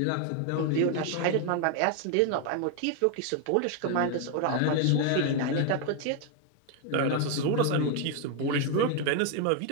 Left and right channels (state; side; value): different; both; correlation 0.01